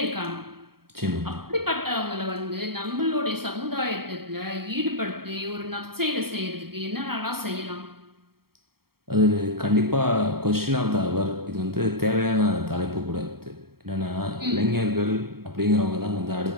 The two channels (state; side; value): late; left; 0.94 ms